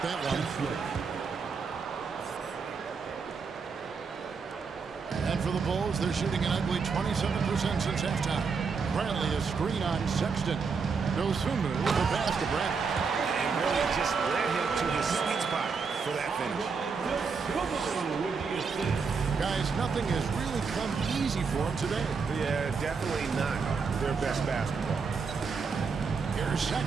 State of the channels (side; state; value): left; quieter; 5.3 dB